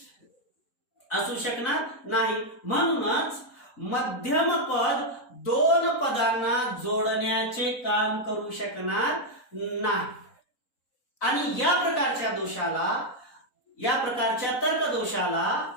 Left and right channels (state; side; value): late; right; 3.9 ms